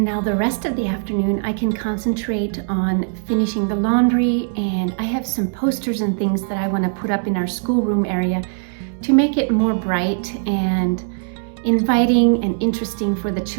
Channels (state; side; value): silent; left; digital silence